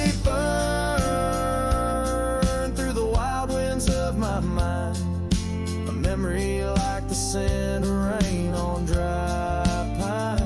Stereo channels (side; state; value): both; identical; correlation 1.00